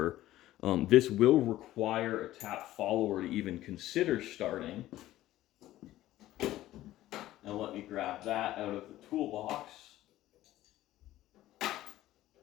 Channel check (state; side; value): quieter; right; 14.8 dB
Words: This will require a tap follower to even consider starting. Now let me grab that out of the toolbox.